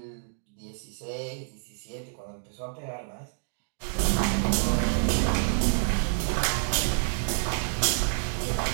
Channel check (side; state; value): left; silent; digital silence